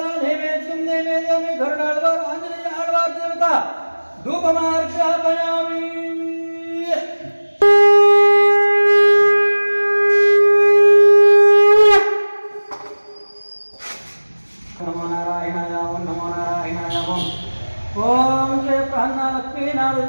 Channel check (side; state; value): both; inverted; correlation -1.00